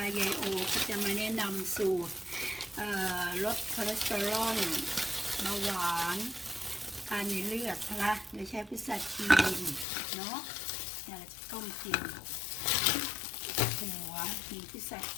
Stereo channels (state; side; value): drops out; right; at 9.9 s